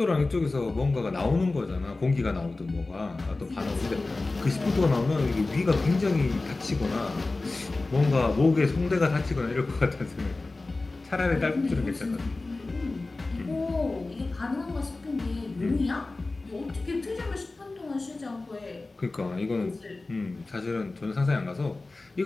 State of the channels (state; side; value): quieter; right; 3.3 dB